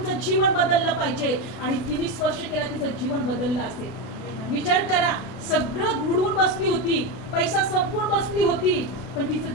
जीवन बदललं पाहिजे. आणि तिने स्पर्श केला, तिचं जीवन बदललं असेल. विचार करा, सगळं बुडवून बसली होती, पैसा संपून बसली होती, पण तिचं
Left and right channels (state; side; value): late; right; 32 ms